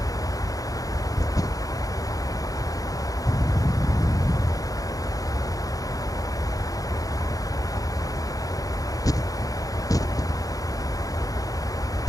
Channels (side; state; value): right; late; 0.17 ms